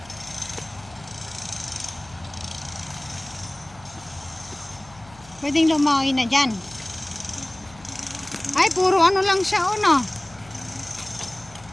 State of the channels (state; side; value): noise; left; hum, 23 dB below the sound